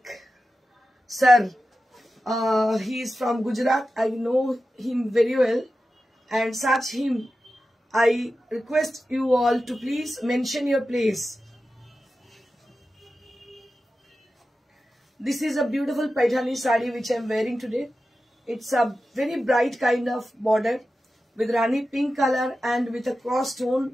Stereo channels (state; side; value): normal; both; correlation 0.93